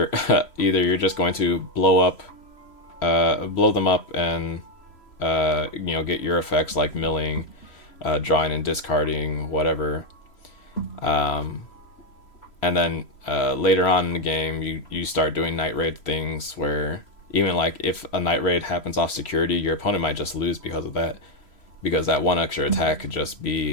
you're just going to blow them up and get your effects like milling, drawing and discarding, whatever. And then later on in the game, you start doing night raid things where even like if a night raid happens off security, your opponent might just lose because of that, because that one extra attack could just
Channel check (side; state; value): right; late; 3.0 ms